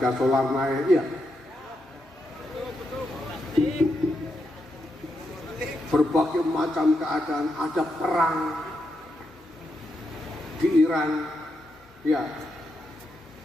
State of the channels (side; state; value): both; normal; correlation 0.83